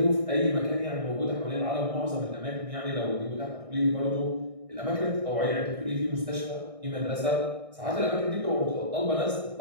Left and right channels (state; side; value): late; left; 1.6 ms